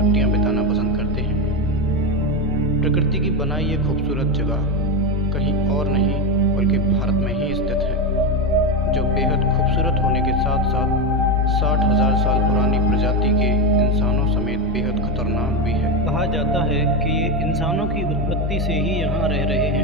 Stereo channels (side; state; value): both; normal; correlation 0.13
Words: बिताना पसंद करते हैं। प्रकृति की बनाई ये खूबसूरत जगह कहीं और नहीं बल्कि भारत में ही स्थित है, जो बेहद खूबसूरत होने के साथ साथ 60,000 साल पुरानी प्रजाति के इंसानों समेत बेहद खतरनाक भी है। कहा जाता है कि ये इंसानों की उत्पत्ति से ही यहाँ रह रहे